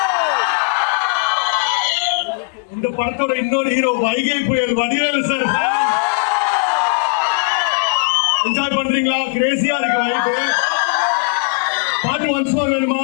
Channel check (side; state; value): right; quieter; 39.2 dB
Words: இந்த படத்தோட இன்னொரு ஹீரோ வைகை புயல் வடிவேலு சார். என்ஜாய் பண்றீங்களா? கிரேசியா இருக்கு வைகை. பாட்டு ஒன்ஸ் மோர் வேணுமா?